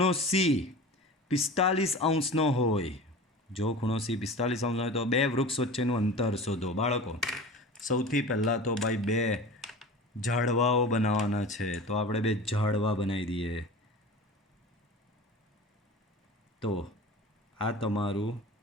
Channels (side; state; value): both; normal; correlation 0.35